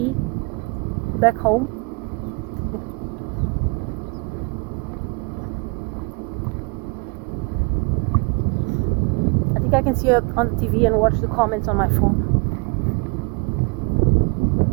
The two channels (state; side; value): quieter; left; 30.9 dB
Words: back home. I think I can see it on the TV and watch the comments on my phone.